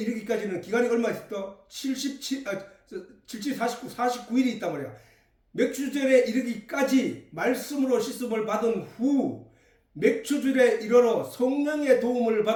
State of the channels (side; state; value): both; identical; correlation 1.00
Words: 기간이 얼마 있었다? 49일이 있단 말이야. 맥추절에 이르기까지 말씀으로 씻음을 받은 후 맥추절에 이르러 성령의 도움을